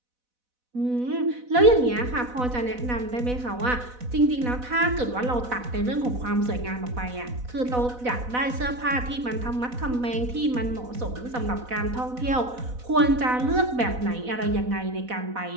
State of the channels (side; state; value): left; late; 4.1 ms